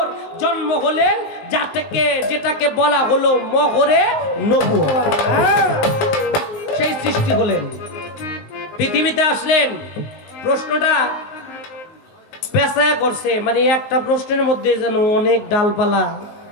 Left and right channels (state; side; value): late; right; 19 ms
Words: জন্ম হলেন, যেটাকে বলা হলো মোহরে নবুয়ত। সেই সৃষ্টি হলেন, পৃথিবীতে আসলেন। প্রশ্নটা পেঁচায় করছে, মানে একটা প্রশ্নের মধ্যে যেন অনেক ডালপালা